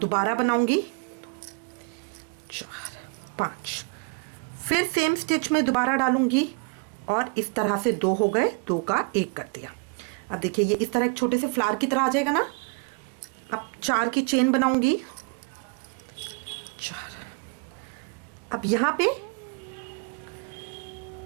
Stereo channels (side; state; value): left; quieter; 35.3 dB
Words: बनाऊंगी, 4 5, फिर सेम स्टिच में दोबारा डालूंगी और इस तरह से 2 हो गए, 2 का 1 कर दिया। अब देखिए ये इस तरह एक छोटे से फ्लावर की तरह आ जाएगा ना। अब 4 की चेन बनाऊंगी, 4। अब यहां पे